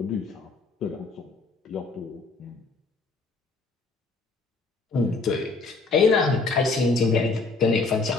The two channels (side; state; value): right; quieter; 3.8 dB